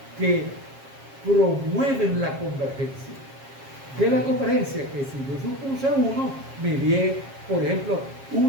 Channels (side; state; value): left; late; 7.4 ms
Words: que promueven la convergencia. De la convergencia, que si yo supuse 1, me di, por ejemplo,